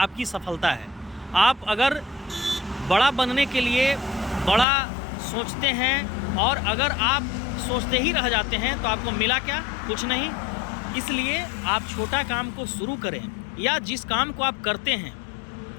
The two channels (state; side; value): drops out; right; at 4.7 s